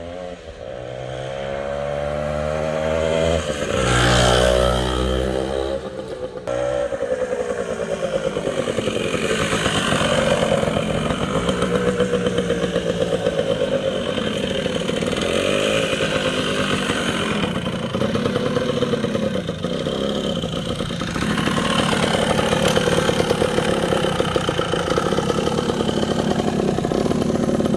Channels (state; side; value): identical; both; correlation 1.00